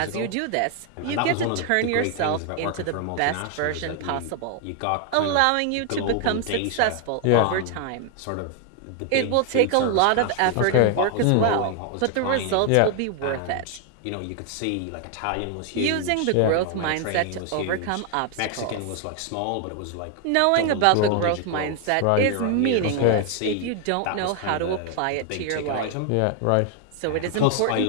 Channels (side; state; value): both; different; correlation 0.00